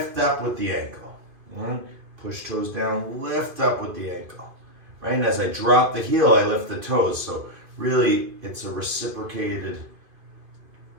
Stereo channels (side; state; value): left; late; 2.5 ms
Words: up with the ankle. Right? Push toes down, lift up with the ankle. Right? And as I drop the heel, I lift the toes. So really, it's a reciprocal